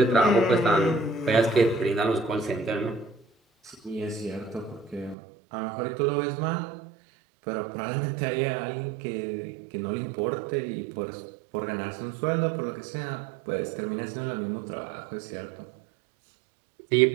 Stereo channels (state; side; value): drops out; left; at 5.2 s